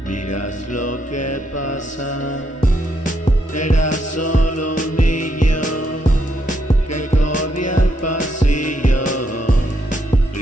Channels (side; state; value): both; normal; correlation 0.77